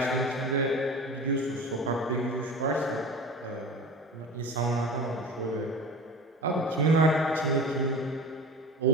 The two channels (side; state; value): both; normal; correlation 0.37